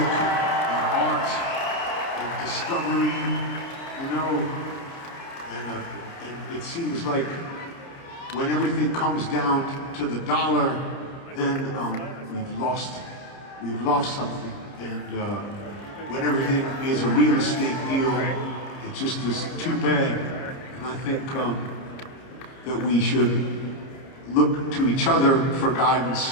and art, and discovery, you know, and it seems like when everything comes down to the dollar, then we've lost something, and when everything is a real estate deal, it just is too bad, and I think that we should look to each other for guidance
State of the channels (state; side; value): late; right; 30 ms